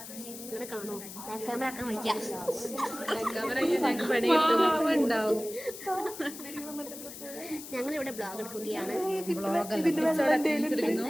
ഇവിടെ കാണോ ക്യാമറ ആക്കാൻ വയ്ക്കാം. ഞങ്ങളിവിടെ ബ്ലോഗ് എടുക്കുകയാണ്.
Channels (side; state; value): left; noise; hiss, 12 dB below the sound